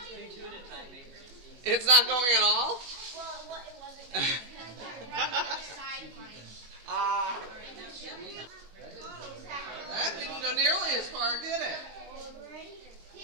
It's not going at all? Well, it wasn't going right on the side of mine. That didn't go nearly as far, did it?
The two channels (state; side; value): late; left; 21 ms